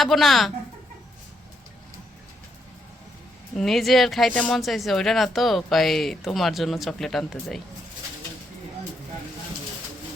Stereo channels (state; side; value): normal; both; correlation 0.77